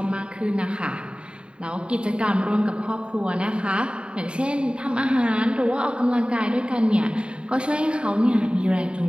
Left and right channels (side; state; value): left; late; 0.053 ms